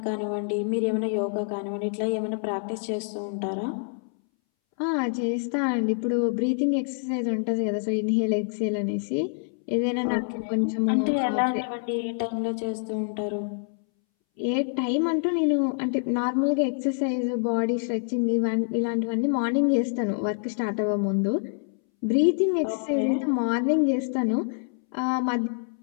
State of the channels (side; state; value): right; silent; 61 dB below the other